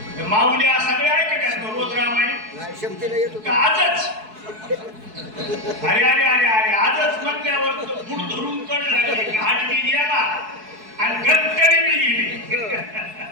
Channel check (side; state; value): left; late; 4.6 ms